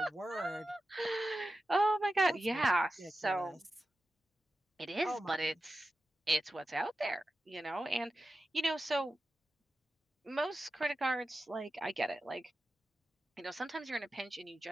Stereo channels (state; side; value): normal; both; correlation 0.92